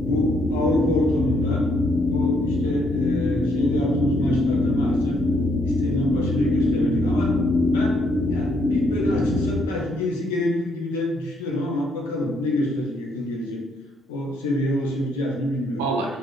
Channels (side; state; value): both; normal; correlation 0.72